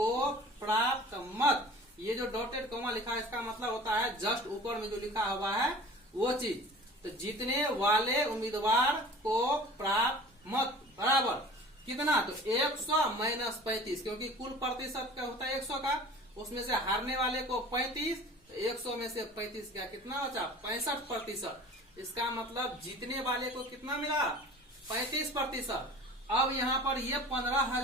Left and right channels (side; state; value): both; normal; correlation 0.43